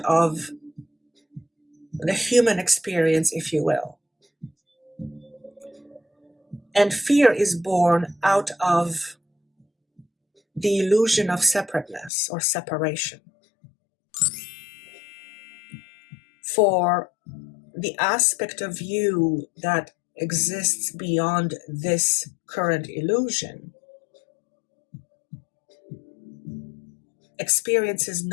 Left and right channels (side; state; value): right; drops out; at 12.1 s